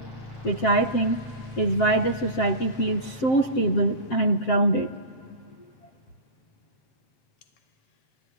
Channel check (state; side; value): late; right; 7.6 ms